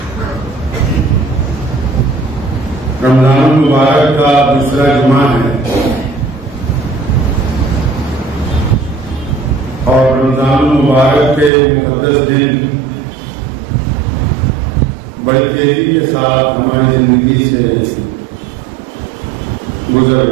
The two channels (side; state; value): left; drops out; at 11.5 s